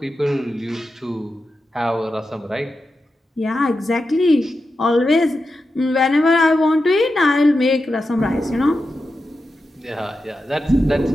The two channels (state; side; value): normal; both; correlation 0.90